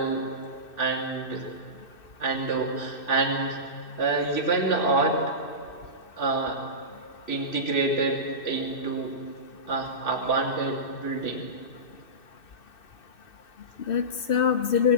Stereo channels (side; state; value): right; late; 2.6 ms